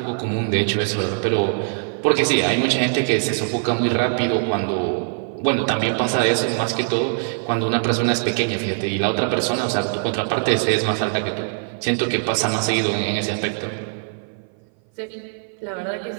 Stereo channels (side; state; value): left; silent; 57 dB below the other